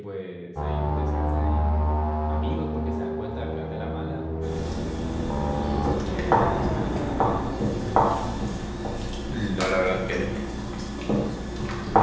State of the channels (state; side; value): identical; both; correlation 1.00